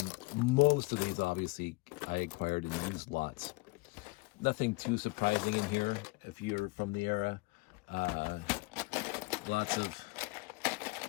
most of these obviously I acquired in used lots. Nothing too surprising in here if you're from the era. Lots of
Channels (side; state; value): right; quieter; 25.1 dB